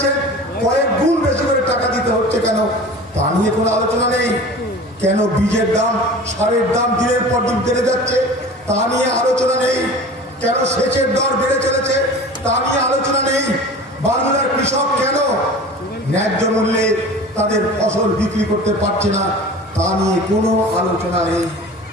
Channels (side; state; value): both; normal; correlation 0.38